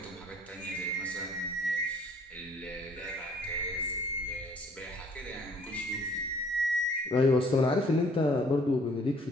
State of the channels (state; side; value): normal; both; correlation 0.58